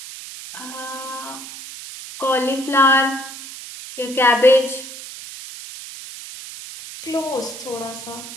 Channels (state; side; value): noise; right; hiss, 12 dB below the sound